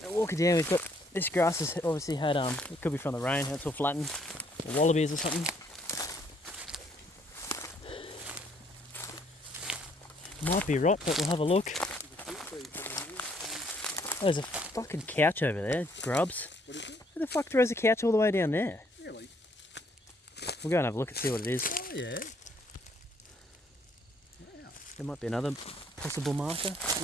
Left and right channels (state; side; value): normal; both; correlation 0.66